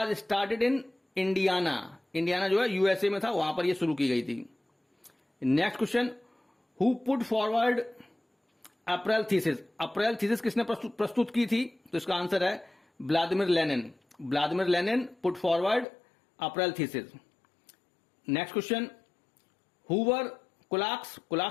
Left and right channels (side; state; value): right; drops out; at 15.9 s